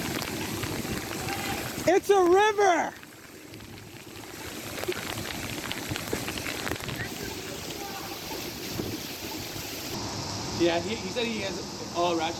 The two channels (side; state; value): both; identical; correlation 1.00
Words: It's a river! Yeah, he said he has all